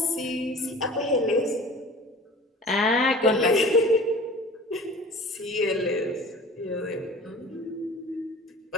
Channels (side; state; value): both; normal; correlation 0.42